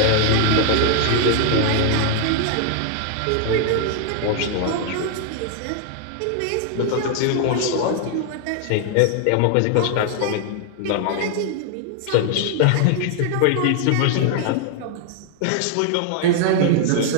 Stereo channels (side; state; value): both; different; correlation 0.00